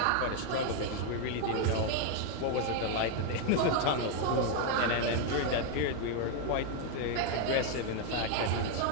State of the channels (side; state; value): both; different; correlation 0.01